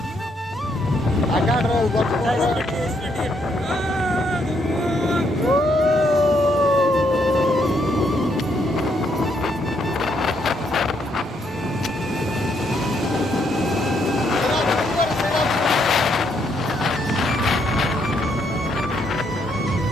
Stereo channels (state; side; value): normal; both; correlation 0.74